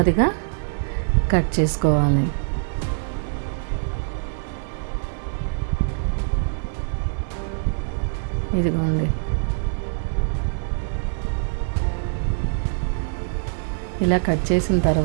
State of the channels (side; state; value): left; silent; digital silence